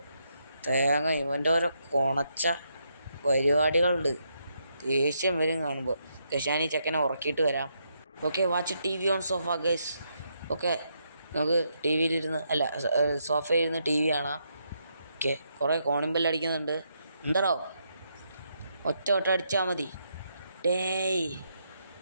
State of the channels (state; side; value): inverted; both; correlation -0.78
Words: തേങ്ങ ഇവൻ്റെ ഓരോ കൊണച്ച പരിപാടികളുണ്ട്. ദേഷ്യം വരും കാണുമ്പോൾ. ഞാൻ ഈ ചെക്കനെ ഉറക്കിയിട്ട് വരാം. Okay, watch TV on sofa guys. Okay, നമുക്ക് സോഫയിലിരുന്ന് TV കാണാം. ഓക്കെ, കുറേ കോണിംഗ് അടിക്കുന്നുണ്ട്. എന്താണോ ഒറ്റ അടിച്ചാൽ മതി. ഡേയ്,